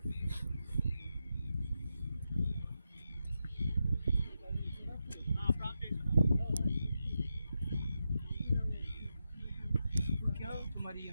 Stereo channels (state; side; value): inverted; both; correlation -0.88